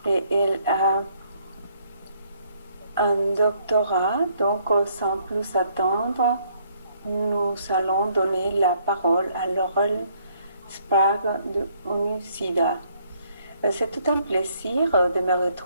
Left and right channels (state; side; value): inverted; both; correlation -0.67